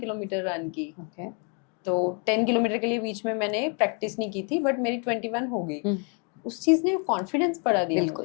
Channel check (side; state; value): right; quieter; 38.7 dB